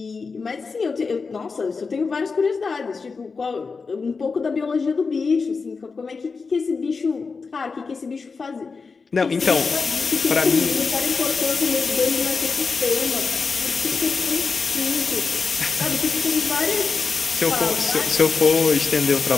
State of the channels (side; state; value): right; quieter; 4.7 dB